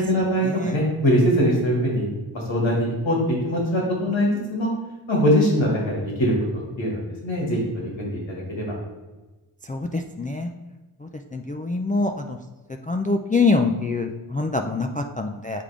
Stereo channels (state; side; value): normal; both; correlation 0.37